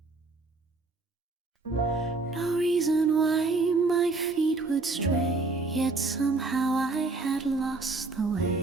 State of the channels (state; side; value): quieter; left; 3.6 dB